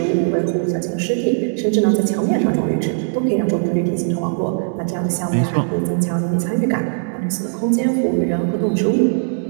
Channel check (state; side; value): silent; left; digital silence